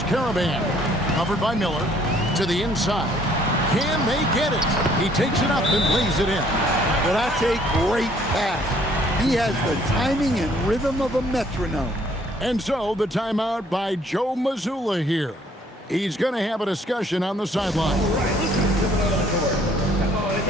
Caravan. Covered by Miller. To the inside. Can they get it? He takes it up and lays it in. Well, that's a great pass. He has the timing and rhythm of a metronome. And so the timeout by Joe Mazzulla here. He's going to have a discussion on the sideline. All right, let's just give it on the court. Come on and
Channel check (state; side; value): normal; both; correlation 0.62